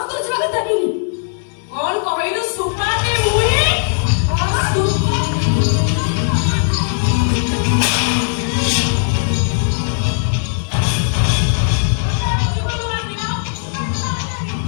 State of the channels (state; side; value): silent; right; digital silence